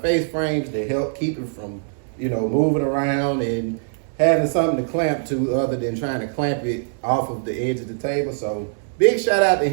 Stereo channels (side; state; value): left; silent; 64 dB below the other